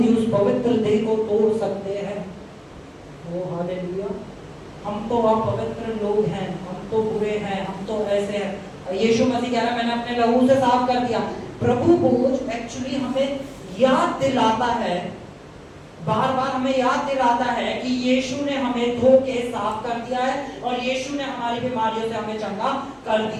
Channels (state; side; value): identical; both; correlation 1.00